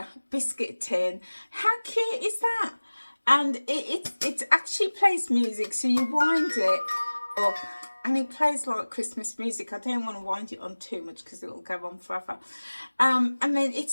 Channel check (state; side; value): inverted; both; correlation -1.00